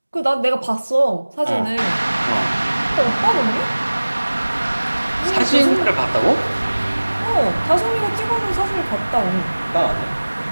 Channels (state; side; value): inverted; both; correlation -1.00